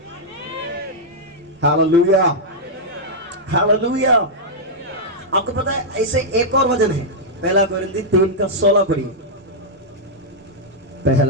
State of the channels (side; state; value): both; normal; correlation -0.06